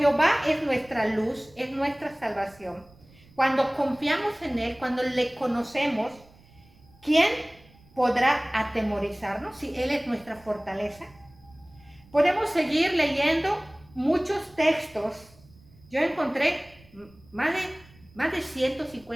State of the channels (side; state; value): right; noise; rumble, 27 dB below the sound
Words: es nuestra luz, es nuestra salvación, cuando confiamos en Él, cuando le conocemos, ¿quién podrá atemorizarnos si Él es nuestra fortaleza? Podemos seguir leyendo muchos textos. Yo encontré más de